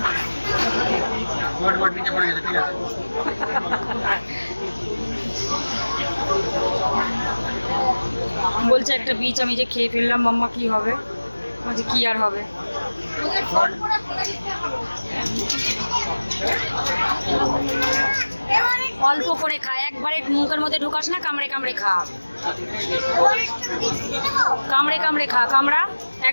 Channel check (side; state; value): both; inverted; correlation -1.00